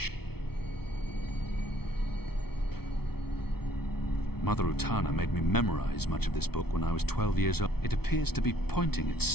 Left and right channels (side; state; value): right; late; 0.95 ms